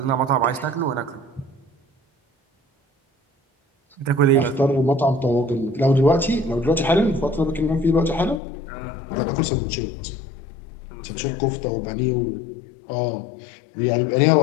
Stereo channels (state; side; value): drops out; right; at 8.4 s